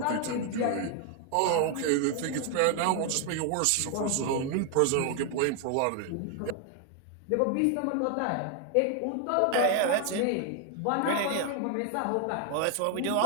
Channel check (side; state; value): both; different; correlation 0.00